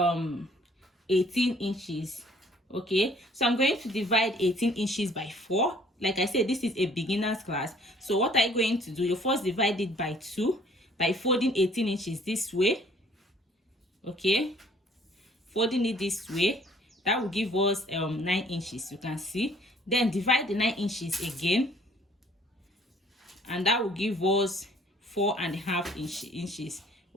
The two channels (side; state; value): both; normal; correlation 0.58